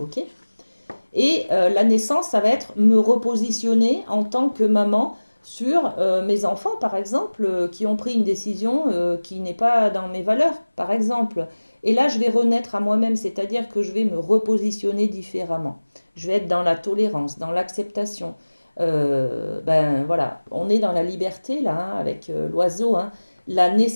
ok? Et la naissance, ça va être me repositionner en tant que maman sur mes enfants, par exemple, qui ont pris une décision qui n'est pas dans mes valeurs, par exemple. Et là, je vais renaître à moi-même, c'est-à-dire que je vais me repositionner différemment. Je vais être dans la tolérance, dans l'acceptation. Ben voilà, on est dans la liberté là, hein, avec l'oiseau, hein. La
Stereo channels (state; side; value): inverted; both; correlation -1.00